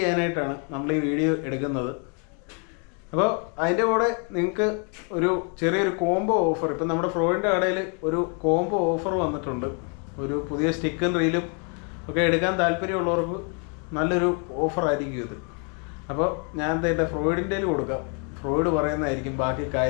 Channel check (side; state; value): right; quieter; 38.5 dB